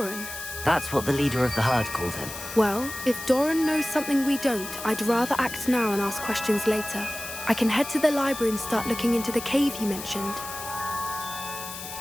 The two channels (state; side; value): noise; left; hiss, 10 dB below the sound